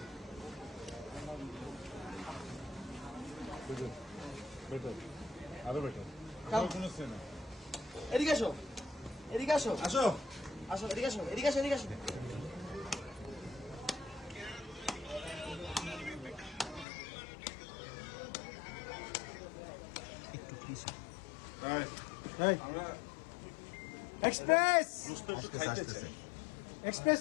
আরো বেটার কোনো সেনা এদিকে আসো এদিকে আসো আসো আসো এদিকে আসো এদিকে আসো এদিকে আসো একটু প্লিজ এই আমরা এক্সপ্রেস আসতেছে এক্সপ্রেস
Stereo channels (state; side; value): drops out; right; at 16.9 s